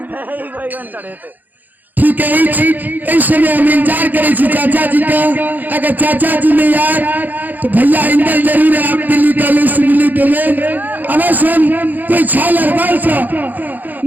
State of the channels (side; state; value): left; late; 0.084 ms